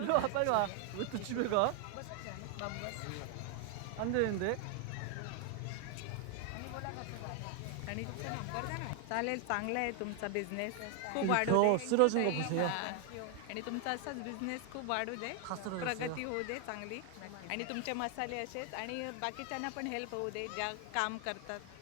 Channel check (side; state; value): both; different; correlation 0.00